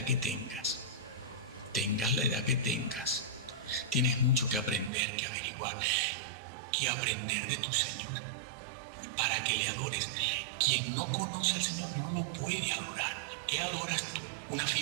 que tengas. Tengas la edad que tengas. Tienes mucho que aprender, que averiguar, que aprender de tu Señor para que le adores. Quien no conoce al Señor no lo puede adorar. ¿Qué adoras tú? Una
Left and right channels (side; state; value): left; drops out; at 4.9 s